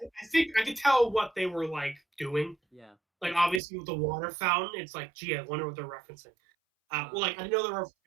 think I could tell what they were like doing. yeah. Like obviously with the water fountain, it's like, gee, I wonder what they're referencing. Well, Uh, like I know they were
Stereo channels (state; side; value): drops out; left; at 3.6 s